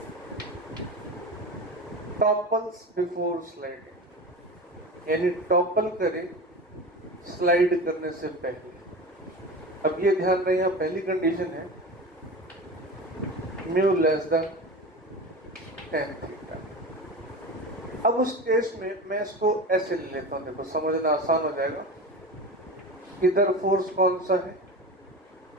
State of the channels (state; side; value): normal; both; correlation 0.29